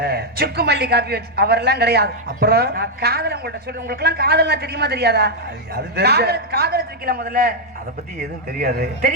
சுக்கு மல்லி காப்பி வச்சு அவரெல்லாம் கிடையாது. அப்புறம் நான் காதல் உங்கள்ட்ட சொல்றேன். உங்களுக்கு எல்லாம் காதல்லாம் தெரியுமா தெரியாதா? காதல் வச்சிருக்கீங்களா? முதல்ல அத பத்தி எதுவும் தெரியாது.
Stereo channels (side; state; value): both; normal; correlation -0.01